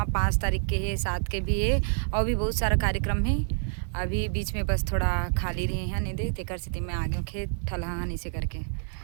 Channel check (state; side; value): silent; left; 60 dB below the other